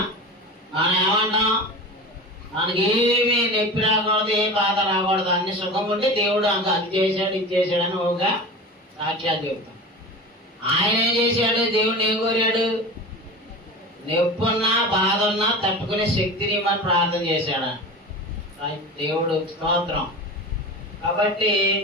మనం ఏమంటాం, మనకేమీ నొప్పి రాకూడదు, ఏ బాధ రాకూడదు, అన్ని సుఖం ఉంటే దేవుడు అది చేశాడు ఇది చేశాడు అని ఒక సాక్ష్యాలు చెబుతాం. ఆయన ఏం చేశాడు, దేవుడిని ఏం కోరాడు, నొప్పి ఉన్నా బాధ ఉన్నా తట్టుకునే శక్తిని మనం ప్రార్థన చేశాడు దేవుడు స్తోత్రం. కాబట్టి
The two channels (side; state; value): both; normal; correlation 0.31